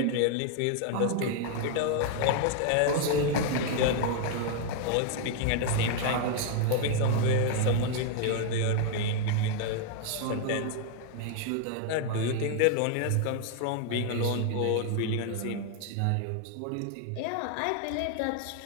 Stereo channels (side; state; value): both; different; correlation 0.00